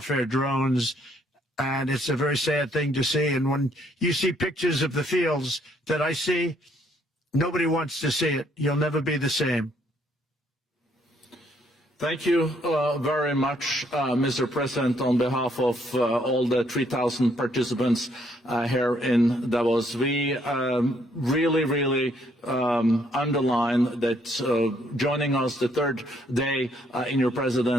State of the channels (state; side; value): normal; both; correlation 0.69